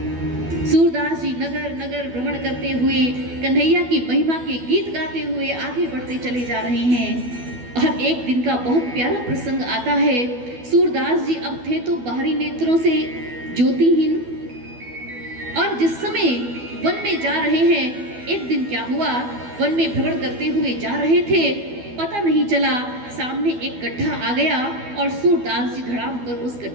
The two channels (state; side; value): late; left; 12 ms